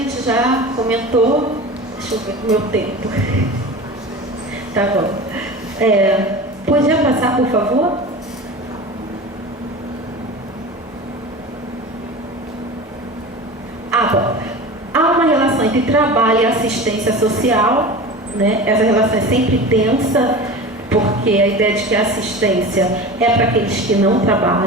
já comentou. Deixa eu ver o meu tempo. Tá bom. Podia passar, por favor? Bom. Há uma relação entre trabalho e assistência social, Essa relação é sempre tensa, porque a ideia de que a assistência é para aqueles que não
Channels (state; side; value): normal; both; correlation 0.33